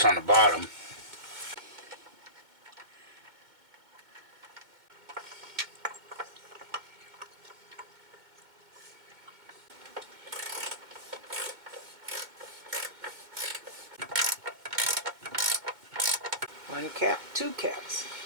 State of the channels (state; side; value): late; left; 2.1 ms